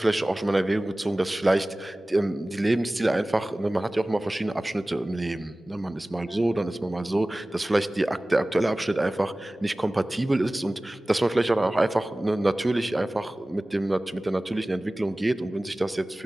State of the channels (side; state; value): both; normal; correlation 0.98